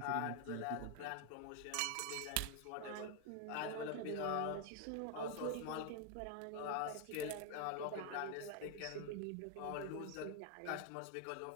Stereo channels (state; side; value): different; both; correlation 0.00